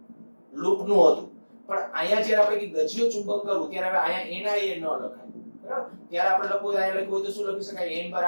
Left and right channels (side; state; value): both; inverted; correlation -1.00